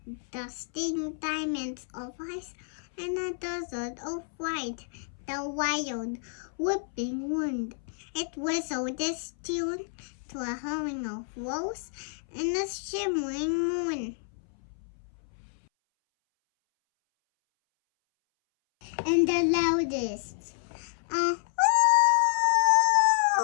dusting diamonds of ice and a desert of white, the wild, whipping wind, it whistled its tune to a hurrying of rose and a shimmering moon. And the loudest, oh!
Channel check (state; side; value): silent; right; 58 dB below the other